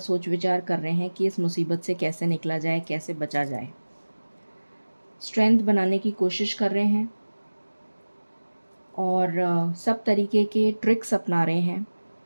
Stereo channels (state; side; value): inverted; both; correlation -1.00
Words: विचार कर रहे हैं कि इस मुसीबत से कैसे निकला जाए, कैसे बचा जाए। स्ट्रेंथ बनाने की कोशिश कर रहे हैं और सब तरीके के ट्रिक्स अपना रहे हैं।